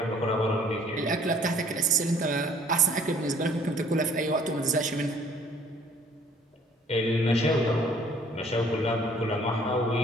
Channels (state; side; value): normal; both; correlation 0.57